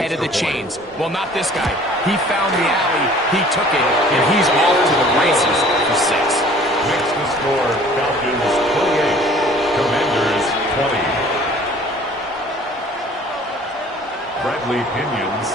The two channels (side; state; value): both; normal; correlation 0.51